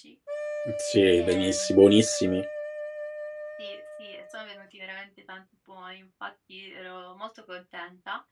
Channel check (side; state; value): both; identical; correlation 1.00